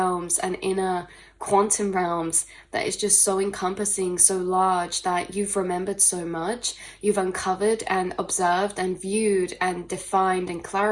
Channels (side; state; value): both; identical; correlation 1.00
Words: and inner quantum realms that is just so encompassing, so large, that you've remembered so much. You've uncovered and observed and viewed and defined and